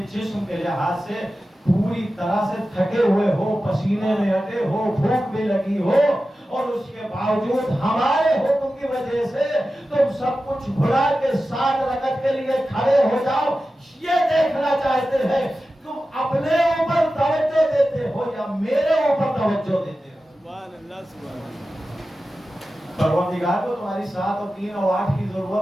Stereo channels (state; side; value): normal; both; correlation 0.93